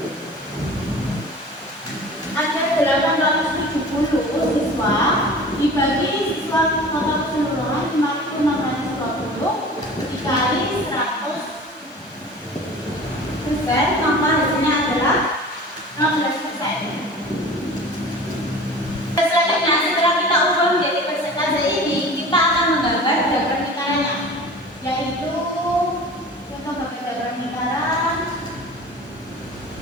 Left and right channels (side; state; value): both; normal; correlation 0.40